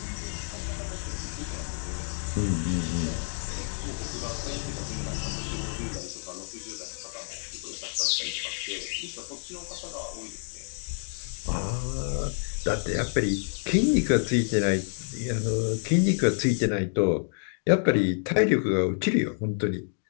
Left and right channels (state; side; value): silent; right; digital silence